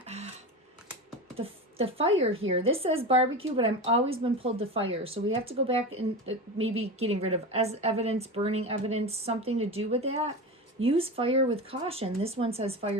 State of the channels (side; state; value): both; normal; correlation 0.24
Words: the fire here, this says barbecue, but I've always been pulled to fire. So we have to go back and maybe getting rid of as evidence, burning evidence, something to do with that. Use fire with caution. This one says